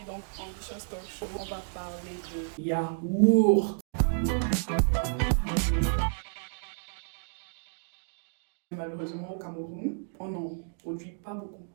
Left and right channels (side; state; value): left; silent; digital silence